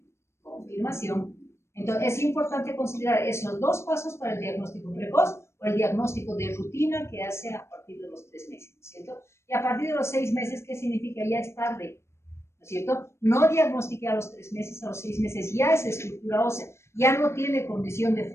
Confirmación. Entonces, es importante considerar esos dos pasos para el diagnóstico precoz o el diagnóstico de rutina que hace a partir de los 3 meses, ¿no es cierto? Y a partir de los 6 meses, ¿qué significa? Ya es tarde, ¿no es cierto? No diagnostiqué a los 3 meses, a los 6 meses ya es estructura ósea, ya no tiene condición de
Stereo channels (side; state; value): right; late; 0.13 ms